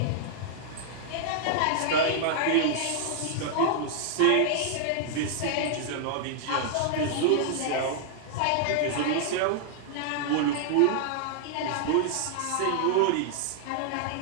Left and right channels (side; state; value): both; different; correlation -0.01